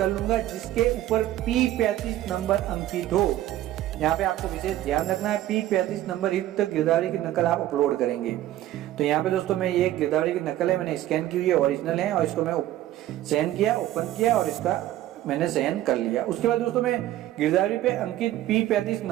लूंगा, जिसके ऊपर P35 नंबर अंकित हो। यहाँ पे आपको विशेष ध्यान रखना है, P35 नंबर युक्त गिरदावरी की नकल आप अपलोड करेंगे। तो यहाँ पे दोस्तों मैं ये गिरदावरी की नकल है, मैंने स्कैन की हुई है, ओरिजिनल है, और इसको मैं सहन किया, ओपन किया और इसका मैंने सहन कर लिया। उसके बाद दोस्तों मैं गिरदावरी पे अंकित P35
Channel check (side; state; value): left; quieter; 14.0 dB